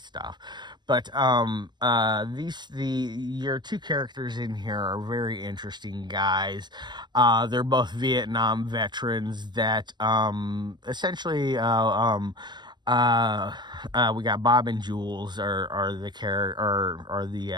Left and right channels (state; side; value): late; left; 0.21 ms